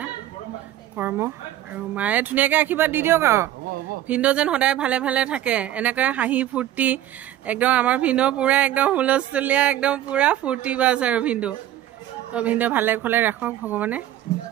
কৰ্ম আৰু মায়ে ধুনীয়াকৈ আশীৰ্বাদ দি দিয়ক আৰু ভিনদেউ যেন সদায় ভালে ভালে থাকে এনেকৈ হাঁহি ফূৰ্তি একদম আমাৰ ভিনদেউ পূৰা একদম হুলস্থুলীয়া একদম পূৰা ফূৰ্তি বাজ আৰু ভিনদেউ তো ভিনদেউ ভালে খলে ৰাখক ভগৱানে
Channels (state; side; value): quieter; left; 12.8 dB